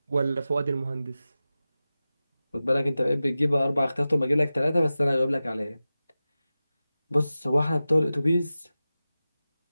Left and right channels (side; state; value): both; inverted; correlation -0.95